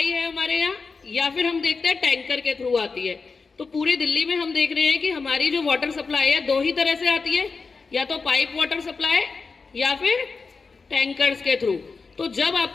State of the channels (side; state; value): right; quieter; 4.6 dB